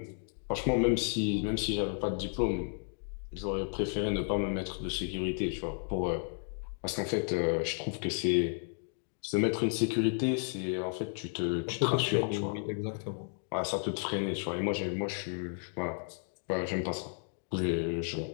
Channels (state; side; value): silent; right; 56 dB below the other